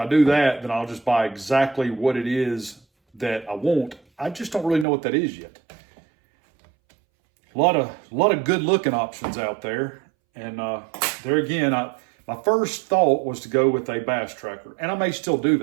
do that, then I'll just buy exactly what it is that I want. I just don't really know what that is yet. A lot of good looking options out there. And there again, my first thought was to go with a bass tracker, and I may still do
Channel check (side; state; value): left; drops out; at 4.9 s